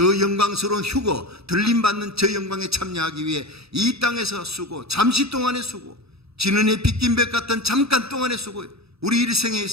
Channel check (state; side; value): late; left; 0.78 ms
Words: 영광스러운 휴거, 들림받는 저 영광에 참여하기 위해 이 땅에서 쓰고 잠시 동안의 수고, 지는 해 빗긴 백 같은 잠깐 동안의 수고, 우리 일생에